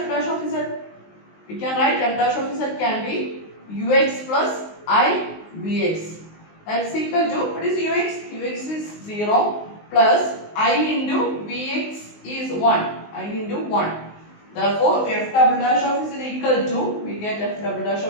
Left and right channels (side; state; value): right; late; 19 ms